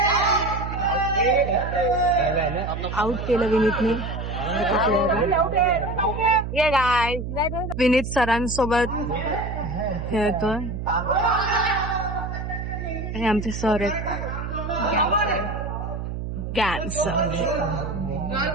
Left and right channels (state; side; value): noise; right; hum, 5 dB below the sound